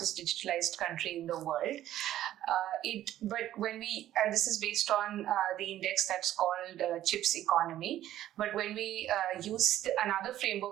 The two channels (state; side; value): quieter; left; 12.9 dB